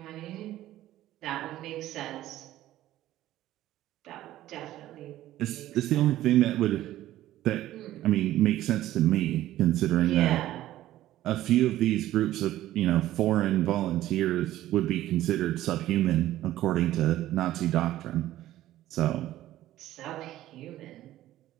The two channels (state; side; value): quieter; left; 14.3 dB